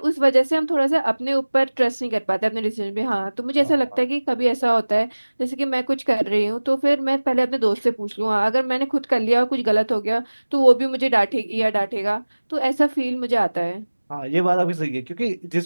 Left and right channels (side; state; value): both; inverted; correlation -1.00